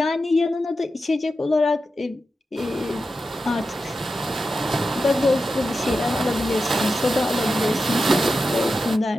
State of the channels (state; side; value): normal; both; correlation 0.90